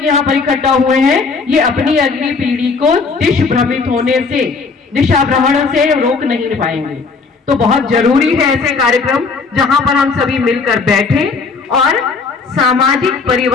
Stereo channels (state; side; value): quieter; right; 4.6 dB